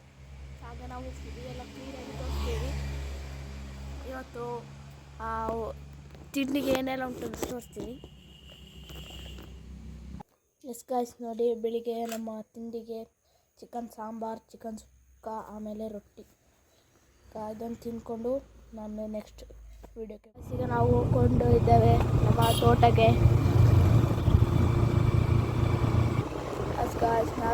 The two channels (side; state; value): both; identical; correlation 1.00